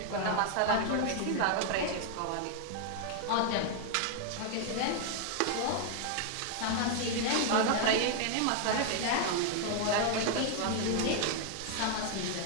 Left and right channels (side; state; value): both; different; correlation 0.00